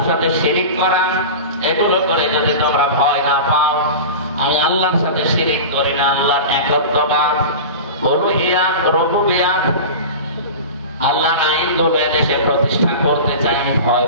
সাথে শিরিক করা, এগুলো করে যদি তোমরা ভয় না পাও, আমি আল্লাহর সাথে শিরিক করি না, আল্লাহর একত্ববাদ, উলুহিয়াত, রুবুবিয়াত, আল্লাহর আইনগুলো এদেশে প্রতিষ্ঠা করতে চাই, ভয়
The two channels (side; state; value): both; inverted; correlation -0.30